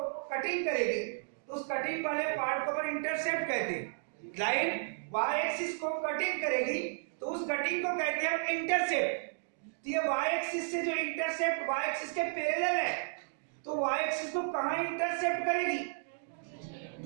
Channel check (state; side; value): silent; left; digital silence